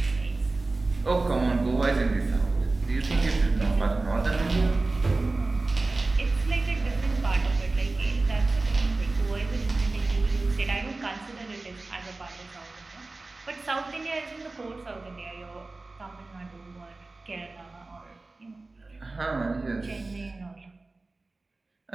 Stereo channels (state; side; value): quieter; left; 3.3 dB